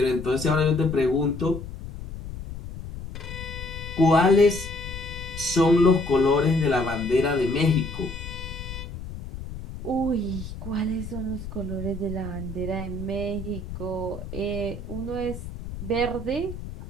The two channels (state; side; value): noise; left; rumble, 10 dB below the sound